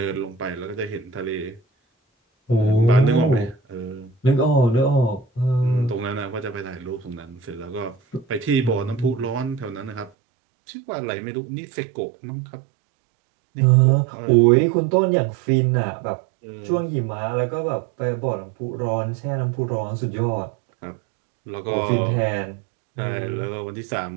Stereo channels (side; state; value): left; drops out; at 10.1 s